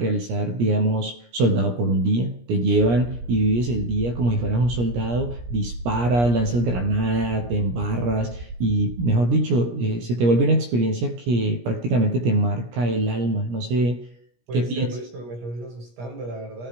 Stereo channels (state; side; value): late; left; 17 ms